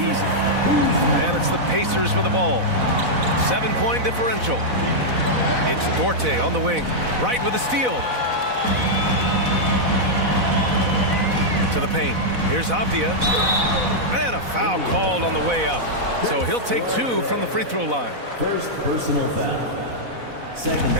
And it's the Pacers with the ball. 7-point differential. It's Dorte on the wing. Right with a steal. To the paint. Here's Avdia. And a foul called on the way up. So he'll take 2 from the free throw line. First personal foul. Second.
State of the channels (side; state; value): left; late; 4.0 ms